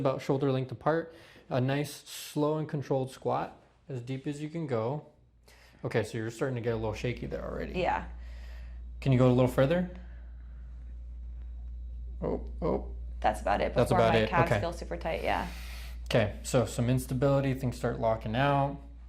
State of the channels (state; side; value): identical; both; correlation 1.00